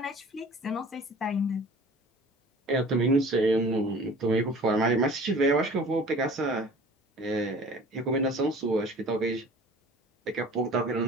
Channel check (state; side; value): normal; both; correlation 0.46